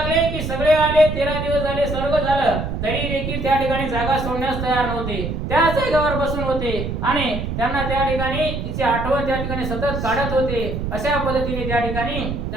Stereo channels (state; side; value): noise; right; rumble, 4 dB below the sound